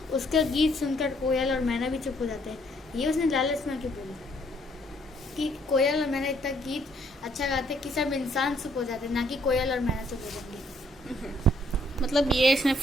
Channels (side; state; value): both; normal; correlation 0.67